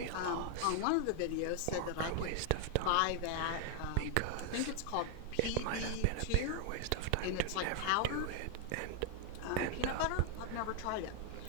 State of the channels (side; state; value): both; different; correlation 0.00